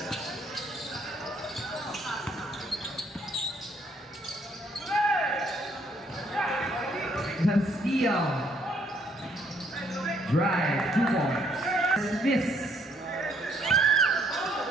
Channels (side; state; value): both; normal; correlation 0.67